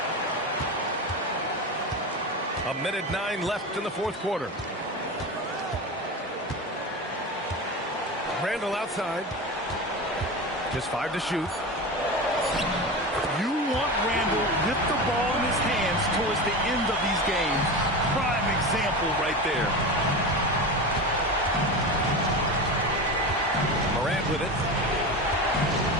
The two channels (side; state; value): both; normal; correlation 0.25